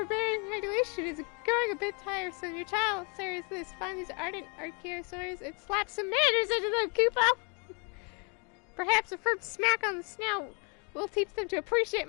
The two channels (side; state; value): right; quieter; 35.4 dB